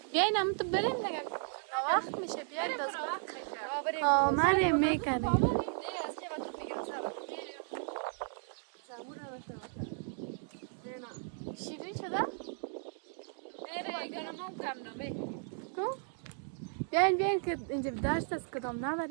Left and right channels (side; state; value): left; silent; 54 dB below the other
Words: بیاین هم تو بریم دیگه، وقت میشه. بیاین باز بریم. آمده میکنیم. شیرین شده؟ بیاین که اینجا دشت است، کدام